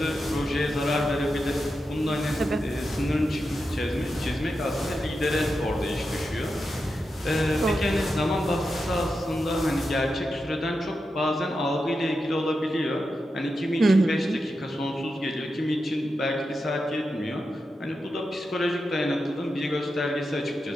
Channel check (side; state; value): both; normal; correlation 0.89